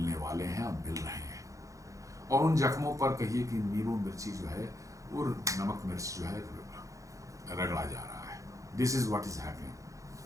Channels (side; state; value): left; late; 0.16 ms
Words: वाले हैं और मिल रहे हैं। और उन जख्मों पर कहिए कि नींबू मिर्ची जो है और नमक मिर्च जो है रगड़ा जा रहा है। This is what is happening.